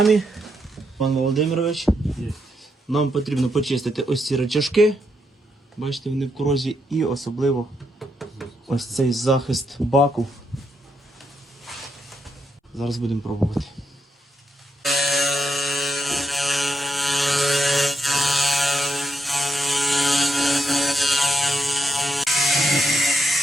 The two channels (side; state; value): both; normal; correlation 0.81